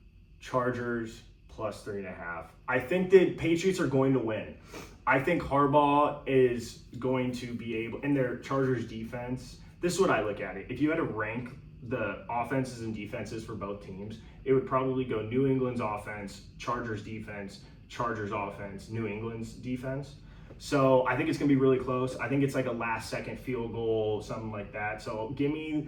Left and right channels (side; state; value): both; identical; correlation 1.00